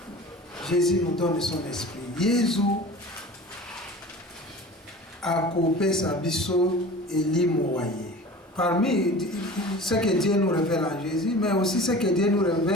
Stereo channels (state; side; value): normal; both; correlation 0.39